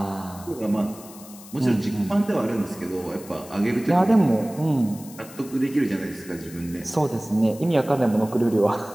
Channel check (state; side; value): noise; left; hiss, 18 dB below the sound